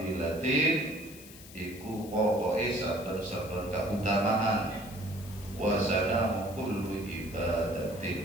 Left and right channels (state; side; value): noise; left; hiss, 18 dB below the sound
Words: iku pokoke saben-saben kautamaan wa sanamu kullu